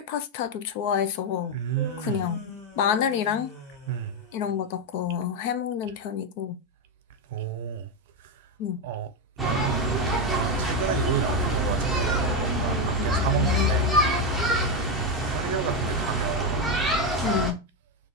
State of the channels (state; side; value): normal; both; correlation 0.07